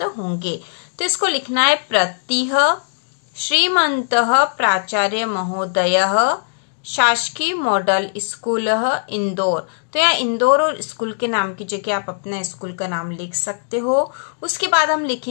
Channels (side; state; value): right; silent; digital silence